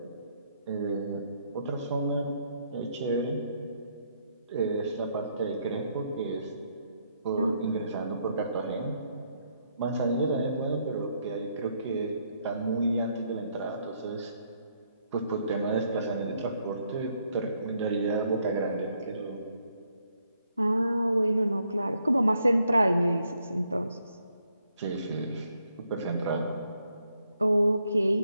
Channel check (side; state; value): both; inverted; correlation -0.74